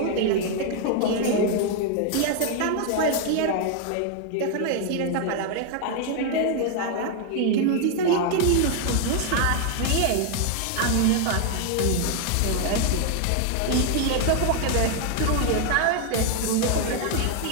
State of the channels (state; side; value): different; both; correlation 0.00